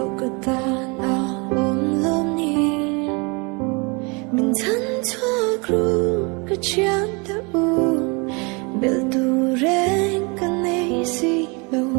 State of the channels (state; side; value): quieter; left; 30.4 dB